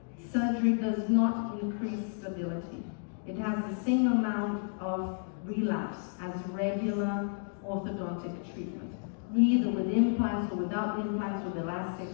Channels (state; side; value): silent; right; 57 dB below the other